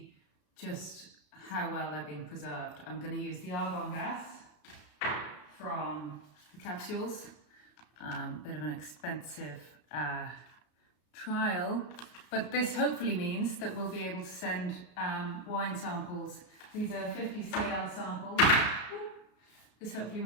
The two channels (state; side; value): late; right; 33 ms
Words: just how well they're being preserved. I'm going to use the argon gas from the capsules, bit of an expensive trial, but this hopefully means that we'll be able to send wine samples. These are 50 CL samples. This hopefully